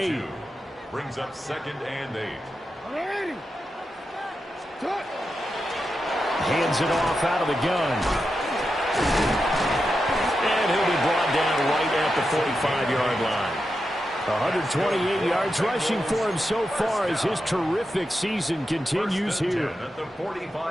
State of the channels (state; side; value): normal; both; correlation 0.88